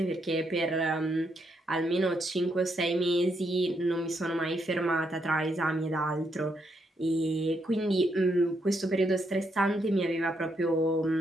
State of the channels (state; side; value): normal; both; correlation 0.78